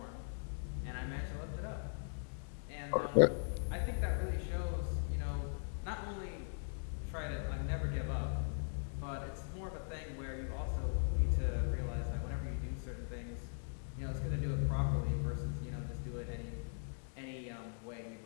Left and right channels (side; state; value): right; silent; digital silence